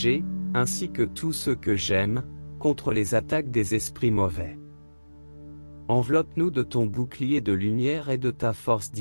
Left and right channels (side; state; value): both; inverted; correlation -1.00